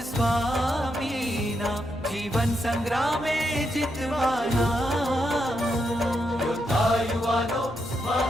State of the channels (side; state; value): left; noise; hum, 22 dB below the sound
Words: स्वामीना जीवन संग्रामे जितवाना योद्धा युवानो